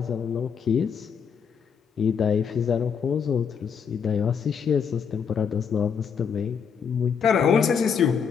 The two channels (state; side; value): quieter; right; 6.8 dB